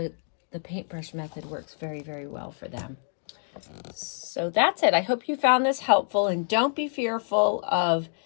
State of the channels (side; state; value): right; silent; digital silence